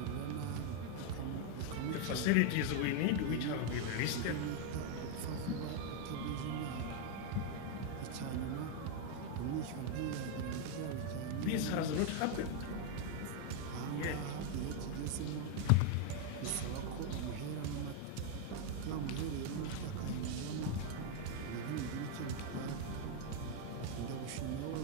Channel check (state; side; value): different; both; correlation 0.01